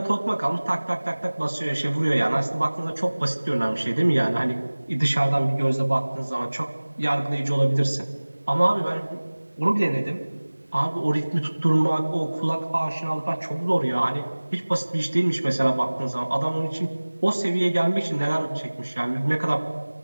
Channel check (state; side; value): inverted; both; correlation -1.00